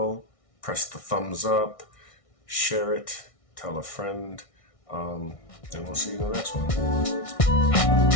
press the thumbs up, share it, tell a friend, and we'll see you in the next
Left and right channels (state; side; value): late; right; 1.6 ms